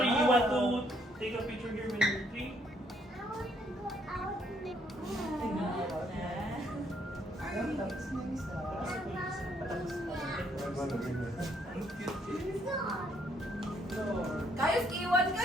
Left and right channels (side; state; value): both; normal; correlation 0.69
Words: You want to take a picture here when you're 3? Tapos na isa. Ano ba naging? Boys, iwan ka